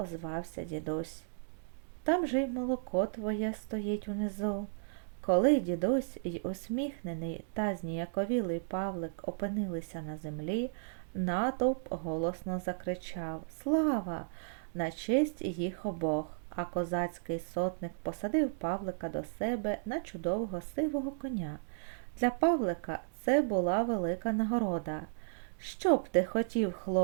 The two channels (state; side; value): silent; left; digital silence